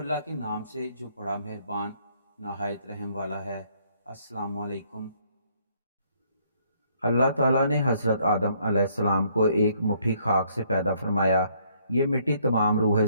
کے نام سے جو بڑا مہربان نہایت رحم والا ہے۔ السلام علیکم۔ اللہ تعالیٰ نے حضرت آدم علیہ السلام کو ایک مٹھی خاک سے پیدا فرمایا۔ یہ مٹی تمام روح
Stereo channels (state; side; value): inverted; both; correlation -0.67